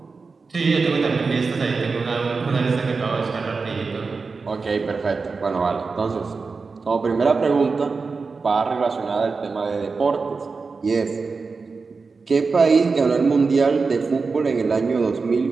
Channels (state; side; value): quieter; left; 4.5 dB